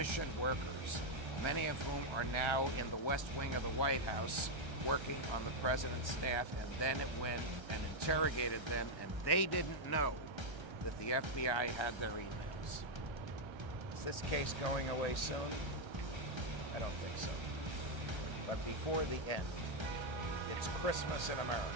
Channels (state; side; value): late; left; 1.3 ms